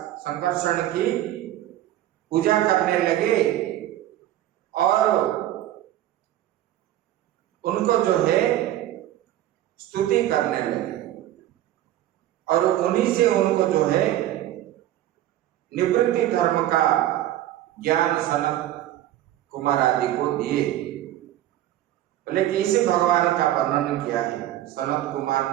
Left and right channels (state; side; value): quieter; left; 13.4 dB